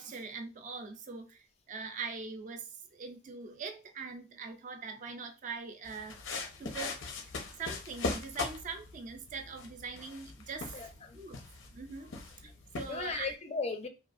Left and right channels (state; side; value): normal; both; correlation 0.12